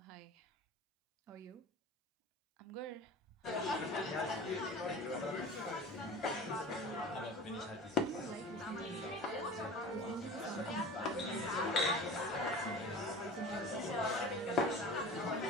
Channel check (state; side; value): normal; both; correlation 0.37